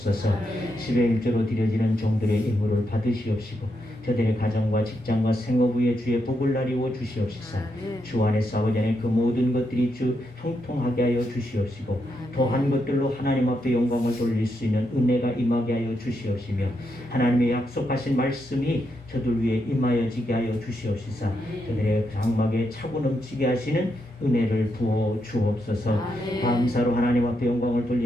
10의 1조로 드려지는 종들의 예물을 받으시옵시고, 저들의 가정과 직장과 생업 위에 주의 복을 나리워 주시옵시사. 주 안에서 아버지 안에 그 모든 것들이 주 형통하게 하여 주시옵시고, 더한 것들로 하나님 앞에 영광을 돌릴 수 있는 은혜가 임하게 하여 주시옵시며, 하나님의 약속하신 말씀이 저들 위에 임하여지게 하여 주시옵시사. 저들의 장막에 차고 넘치게 하시는 은혜를 부어 주옵소서. 감사로 하나님 앞에 영광을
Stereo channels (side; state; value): both; normal; correlation 0.82